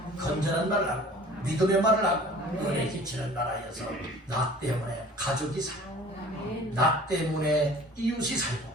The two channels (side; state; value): both; normal; correlation 0.47